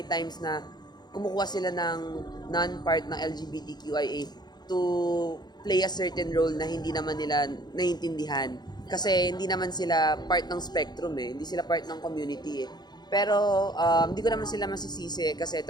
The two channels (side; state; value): right; late; 0.20 ms